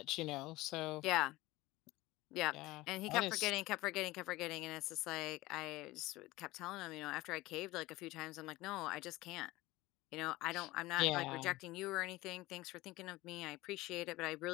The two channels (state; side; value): quieter; right; 19.3 dB